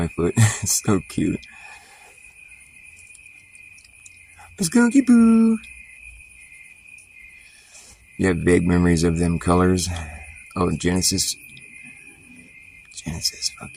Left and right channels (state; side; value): identical; both; correlation 1.00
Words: foot. It's so cute. Skunky Poo. You have vague memories of them colors. Oh, Genesis. Genesis, fuck